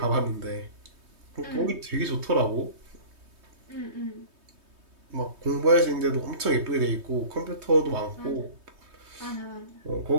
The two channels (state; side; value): late; left; 3.2 ms